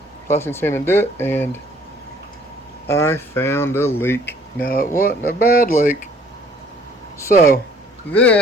plastic sand and do it, and I found a leak. Now, it wasn't a bad leak. So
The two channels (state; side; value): normal; both; correlation 0.57